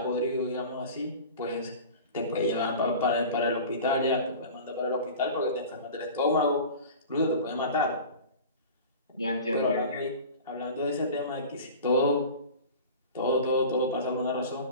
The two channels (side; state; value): both; inverted; correlation -0.37